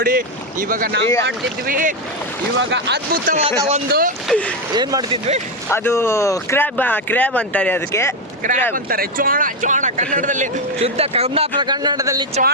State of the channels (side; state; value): both; normal; correlation 0.06